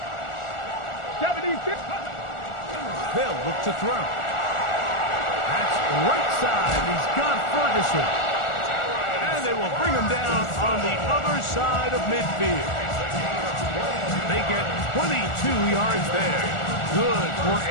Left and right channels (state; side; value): late; right; 1.4 ms